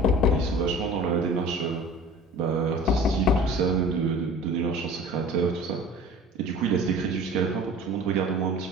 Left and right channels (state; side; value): normal; both; correlation 0.42